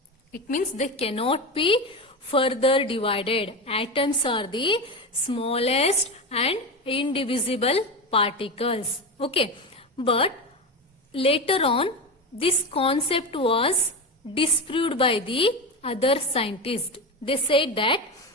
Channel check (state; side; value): normal; both; correlation 0.20